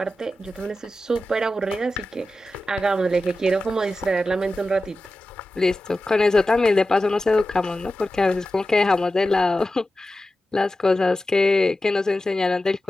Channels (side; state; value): both; normal; correlation 0.93